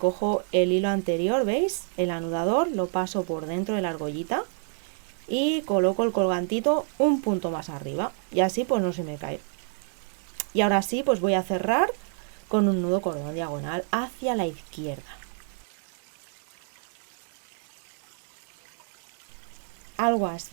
el hilo anterior, ¿veis? El anudador, lo paso por dentro de la argollita y coloco el colgantito un punto más arriba y así pues no se me cae. Y ahora sí pues voy a cerrar con un nudo cordón diagonal hacia la izquierda. Algo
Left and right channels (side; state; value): left; silent; 57 dB below the other